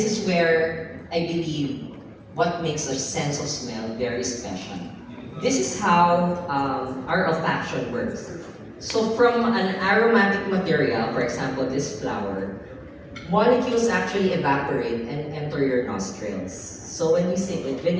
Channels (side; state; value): both; identical; correlation 1.00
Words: is where I believe what makes our sense of smell very special. This is how our olfaction works. So from an aromatic material, for example, this flower, molecules actually evaporate and enter your nostrils. So when you say,